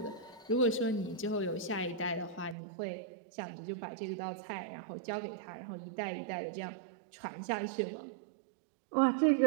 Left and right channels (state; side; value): drops out; left; at 2.6 s